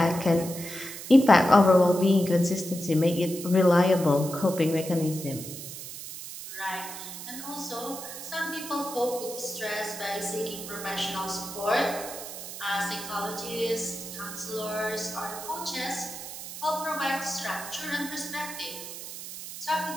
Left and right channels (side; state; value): right; noise; hiss, 10 dB below the sound